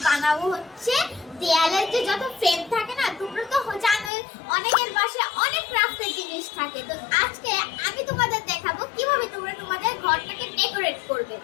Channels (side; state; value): right; drops out; at 4.1 s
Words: বানাবো হচ্ছে দেয়ালের যে যত ফ্রেম থাকে না, তোমরা তো জানোই অনেকের বাসায় অনেক ক্রাফটের জিনিস থাকে। তো আজকে আমি তোমাদের দেখাবো কিভাবে তোমরা তোমাদের ঘরটাকে ডেকোরেট করবে।